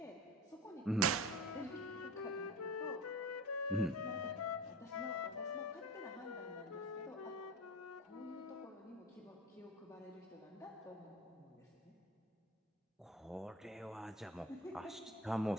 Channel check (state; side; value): normal; both; correlation 0.31